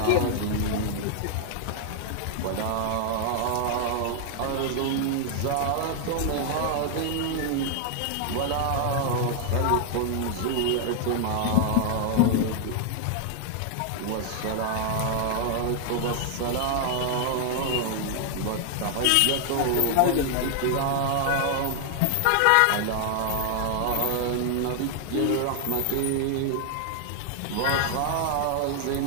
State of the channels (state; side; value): different; both; correlation 0.00